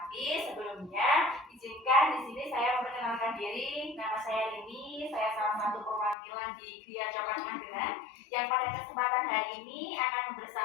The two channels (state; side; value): drops out; right; at 6.2 s